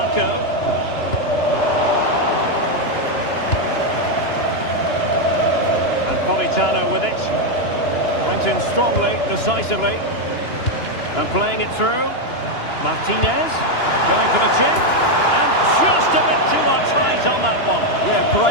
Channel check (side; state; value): right; late; 2.9 ms